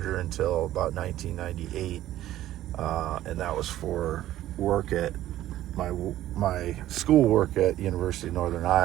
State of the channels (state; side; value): quieter; left; 13.7 dB